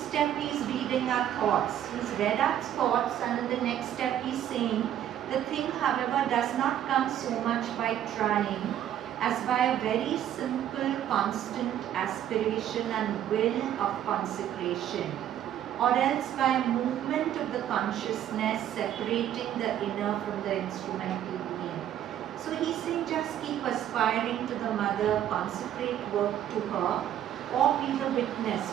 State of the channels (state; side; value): quieter; left; 10.9 dB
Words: he's reading our thoughts. He's read our thoughts, and in the next step he's saying, the thing, however, does not come so much by trying as by a very simple, constant aspiration and will of consecration, or else by a movement of the consciousness separating the inner from the instrumental being. So he's saying just keep aspiring to the Mother, consecrate work to her, or be the witness.